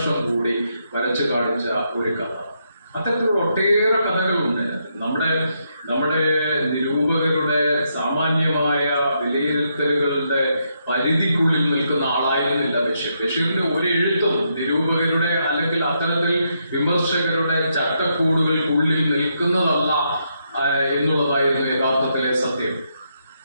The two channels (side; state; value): both; inverted; correlation -0.79